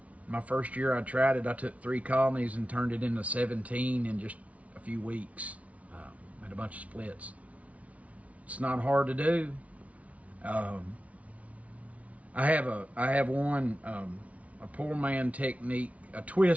My first year I tried it, I took 3 colonies and turned it into 17 in just a few weeks. Had a bunch of splits. It's not hard to do. I have one, a poor man technique, a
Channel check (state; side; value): late; left; 0.067 ms